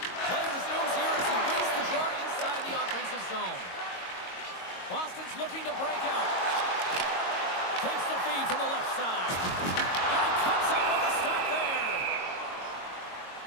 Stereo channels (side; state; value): right; late; 22 ms